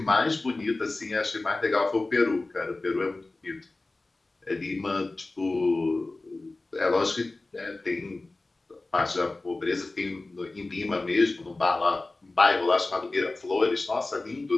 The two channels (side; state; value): right; quieter; 3.1 dB